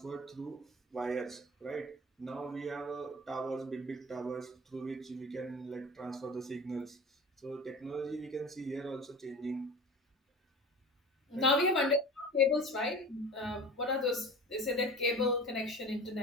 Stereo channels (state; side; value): normal; both; correlation 0.37